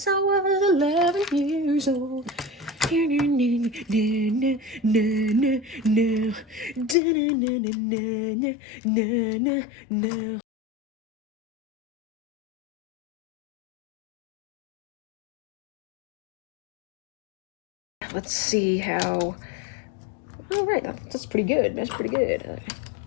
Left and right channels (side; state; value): right; drops out; at 7.0 s